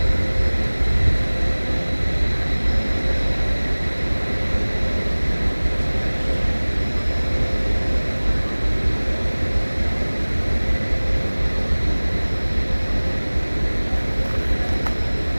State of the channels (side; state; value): both; inverted; correlation -1.00